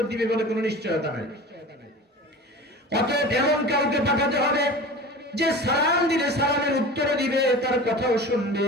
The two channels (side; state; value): both; normal; correlation 0.36